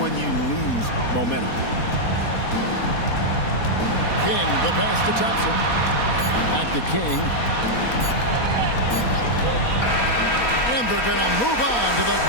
you lose momentum. King, the pass to Thompson. Back to King. And they're going to move on to the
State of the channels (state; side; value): late; right; 4.2 ms